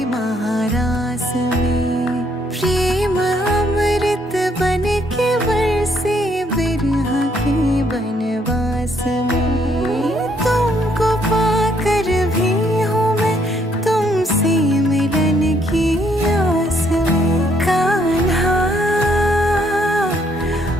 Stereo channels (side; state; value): both; normal; correlation 0.69